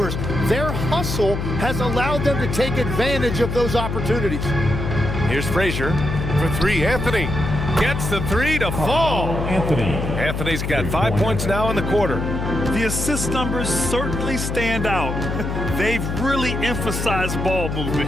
Their hustle has allowed them to take advantage of those opportunities. Here's Frazier for 3. Anthony gets the 3 to fall. Anthony's got 5 points now in the quarter. The assist numbers certainly stand out. They've really emphasized ball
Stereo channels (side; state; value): left; noise; hum, 3 dB below the sound